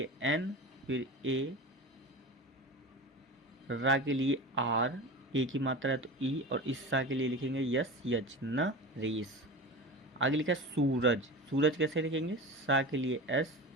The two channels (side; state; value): both; normal; correlation 0.30